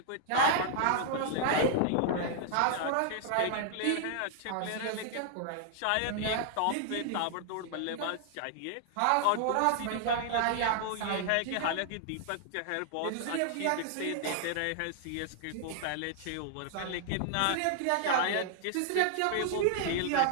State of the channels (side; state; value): both; different; correlation -0.01